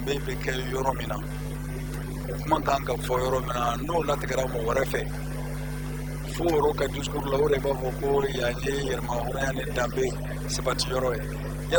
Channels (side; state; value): both; identical; correlation 1.00